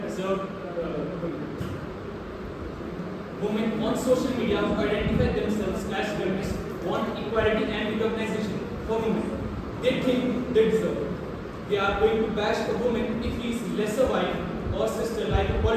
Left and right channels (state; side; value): identical; both; correlation 1.00